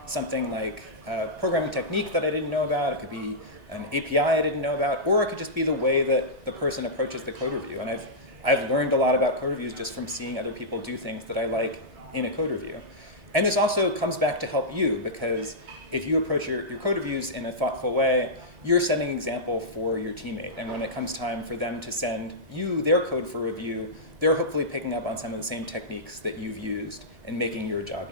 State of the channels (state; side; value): late; left; 2.0 ms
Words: something like a programming technique that I didn't know about. It could be an API I didn't know about, or it could just be the way that the person approaches the code review. And I've learned a lot about code reviews just from seeing other people do things that I like in a code review. And this also comes back to help you, because if you approach your code reviews in a thoughtful way, you're setting an example for your teammate. And when it comes time for them to send you their code for review, they're hopefully picking up on some of the same techniques that you've used and making your job